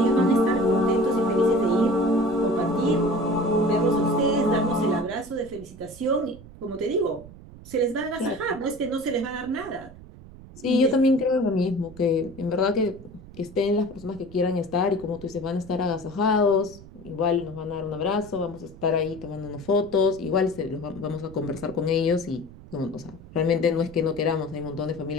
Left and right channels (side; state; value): right; noise; rumble, 18 dB below the sound